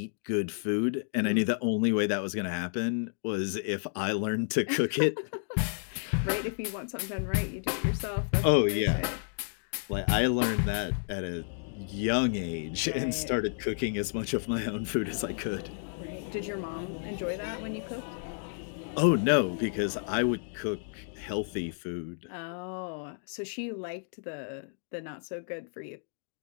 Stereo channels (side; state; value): right; silent; digital silence